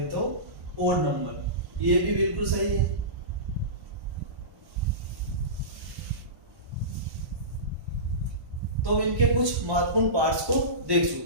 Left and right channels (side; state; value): left; late; 1.1 ms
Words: तो ओड नंबर, ये भी बिल्कुल सही है। तो इनके कुछ महत्वपूर्ण पार्ट्स को देख